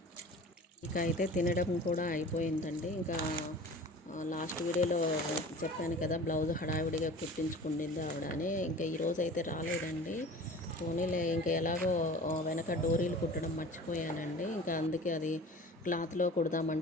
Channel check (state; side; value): normal; both; correlation 0.41